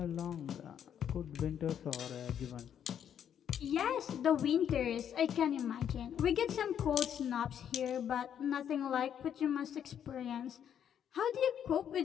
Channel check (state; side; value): quieter; right; 9.1 dB